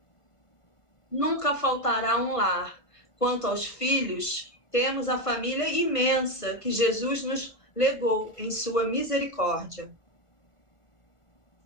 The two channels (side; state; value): right; late; 1.4 ms